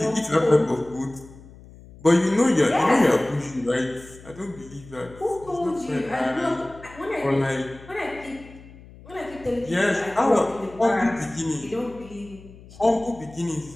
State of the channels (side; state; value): left; noise; hum, 20 dB below the sound